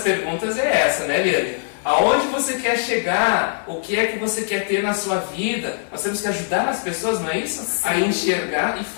é essa, né, Liane? Aonde você quer chegar? O que é que você quer ter na sua vida? Nós temos que ajudar as pessoas, não é isso? Sim. A enxergar e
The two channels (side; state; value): right; silent; digital silence